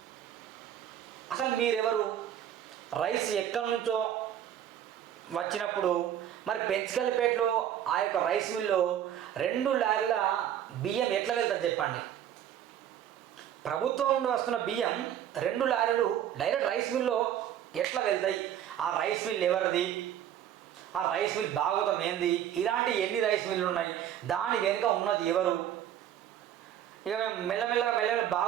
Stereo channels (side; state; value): left; quieter; 10.5 dB